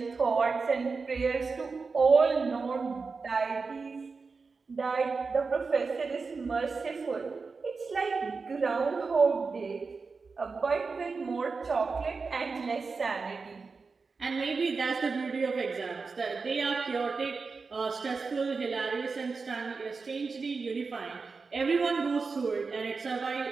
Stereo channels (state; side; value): quieter; left; 4.6 dB